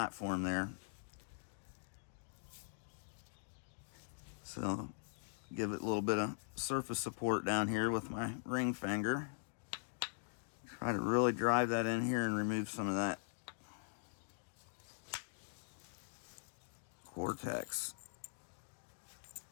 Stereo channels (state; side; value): silent; right; digital silence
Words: there. So give it a little bit of surface support down here with my ring finger. Try to really drive that in here and remove some of that cortex.